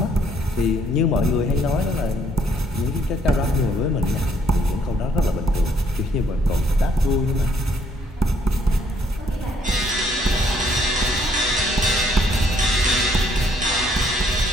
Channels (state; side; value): normal; both; correlation 0.67